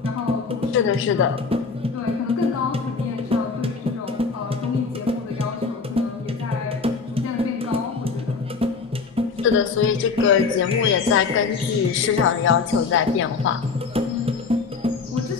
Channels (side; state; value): right; quieter; 4.9 dB